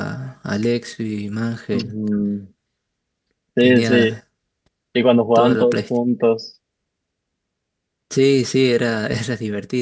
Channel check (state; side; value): identical; both; correlation 1.00